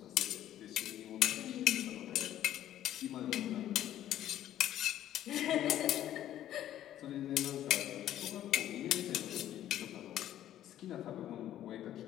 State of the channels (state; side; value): quieter; right; 12.1 dB